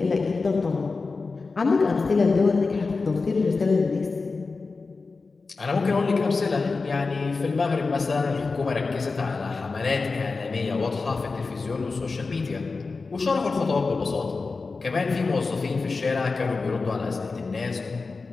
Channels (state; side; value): quieter; right; 4.1 dB